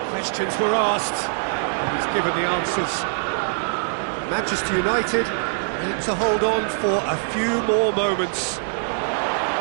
Questions were asked, and he's given the answers. Manchester United need to hold on for a few more moments.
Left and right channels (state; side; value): silent; left; digital silence